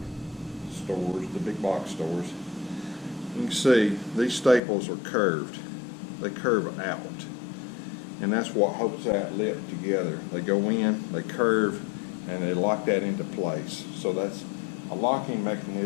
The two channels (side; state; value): right; drops out; at 4.6 s